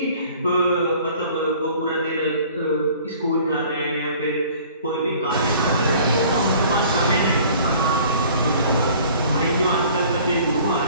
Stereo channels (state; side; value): inverted; both; correlation -0.51